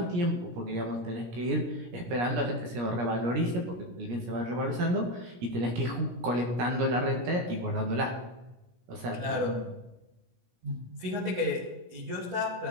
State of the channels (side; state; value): left; late; 17 ms